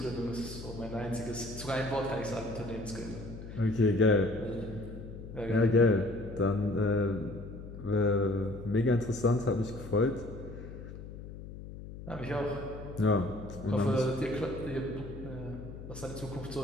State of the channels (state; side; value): noise; left; hum, 12 dB below the sound